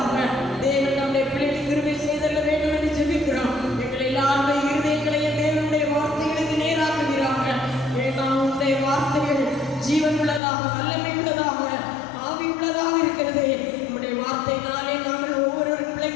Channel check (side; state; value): right; drops out; at 10.4 s